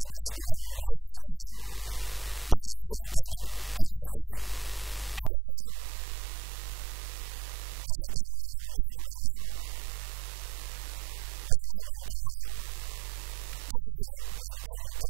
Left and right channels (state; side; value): drops out; left; at 5.3 s